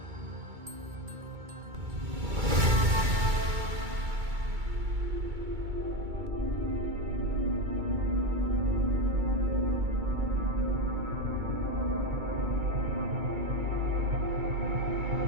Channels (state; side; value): late; left; 2.3 ms